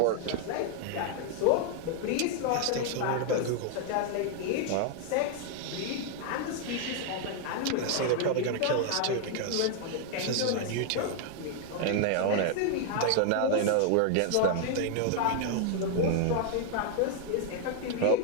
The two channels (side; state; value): both; different; correlation 0.00